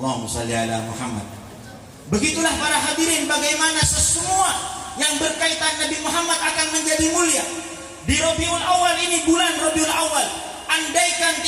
shalli ala Muhammad. Begitulah para hadirin, bagaimana semua yang berkaitan Nabi Muhammad akan menjadi mulia. Di Rabiul Awal ini, bulan Rabiul Awal, andaikan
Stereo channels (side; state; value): both; identical; correlation 1.00